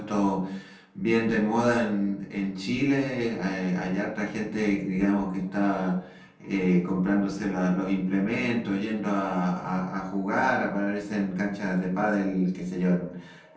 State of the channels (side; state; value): both; identical; correlation 1.00